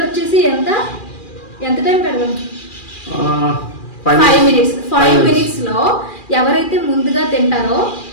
వచ్చేసి ఎంత టైం పెడదాం? 5 minutes. 5 minutes లో ఎవరైతే ముందుగా తింటారో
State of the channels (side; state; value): right; late; 2.4 ms